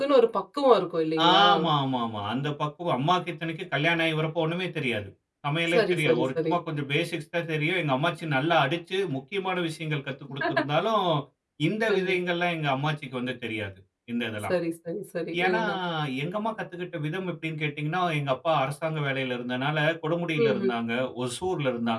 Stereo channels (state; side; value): identical; both; correlation 1.00